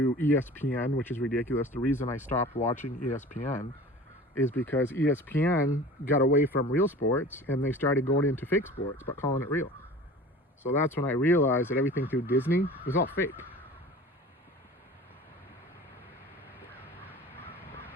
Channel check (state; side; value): normal; both; correlation 0.40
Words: ESPN, which is ridiculous. The reason I stopped watching ESPN is because ESPN got away from real sports and they started going into fake sports, but calling it real. So that's when I realized that everything through Disney was all fake.